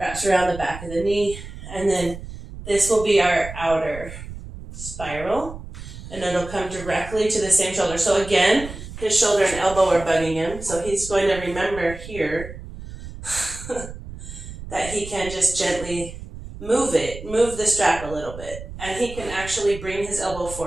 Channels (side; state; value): right; noise; rumble, 12 dB below the sound